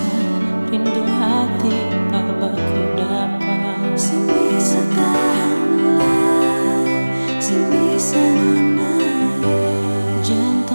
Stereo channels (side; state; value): both; inverted; correlation -1.00